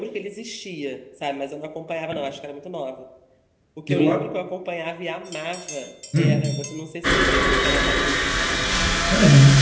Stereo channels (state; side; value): identical; both; correlation 1.00